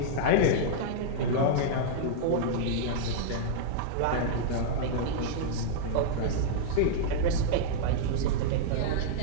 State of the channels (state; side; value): different; both; correlation -0.02